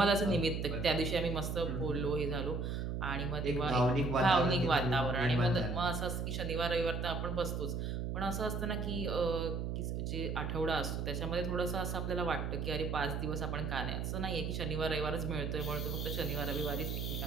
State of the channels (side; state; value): right; noise; hum, 2 dB below the sound